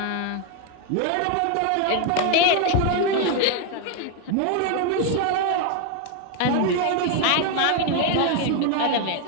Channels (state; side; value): different; both; correlation 0.01